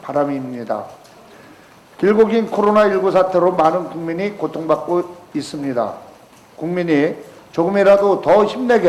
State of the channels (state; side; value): identical; both; correlation 1.00